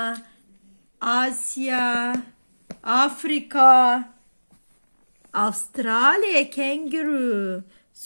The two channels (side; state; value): both; inverted; correlation -1.00